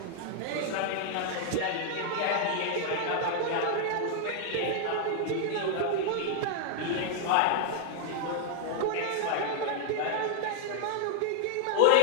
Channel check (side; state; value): both; different; correlation 0.00